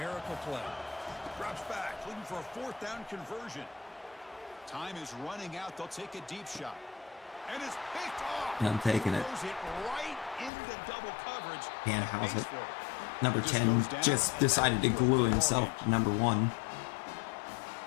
play. Drops back, looking for a 4th down conversion. Time is running out. They'll take a deep shot. And it's picked off. And I'm taking it. Throws it right into double coverage. Can't house Pays it. for it. Number 10 just decided to glue himself to number 1.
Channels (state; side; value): drops out; right; at 10.5 s